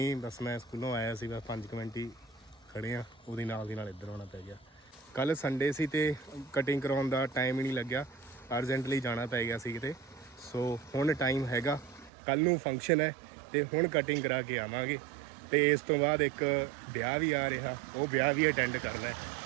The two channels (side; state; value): left; drops out; at 12.1 s